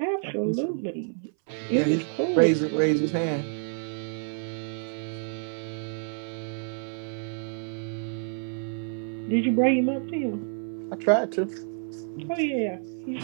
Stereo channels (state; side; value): silent; left; 59 dB below the other